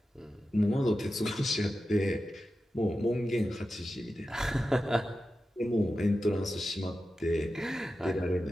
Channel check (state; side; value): normal; both; correlation 0.92